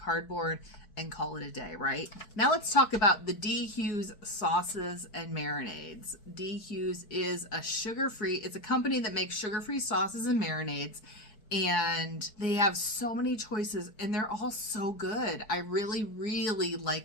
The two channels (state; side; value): late; right; 4.8 ms